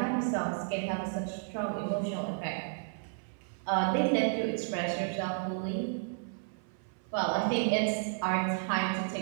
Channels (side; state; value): left; silent; 56 dB below the other